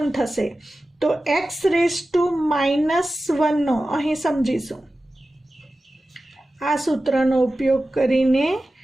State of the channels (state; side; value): normal; both; correlation 0.95